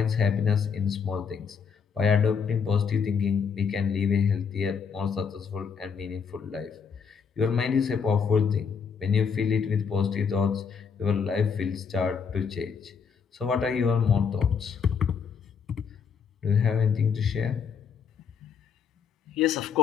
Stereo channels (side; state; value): right; quieter; 6.3 dB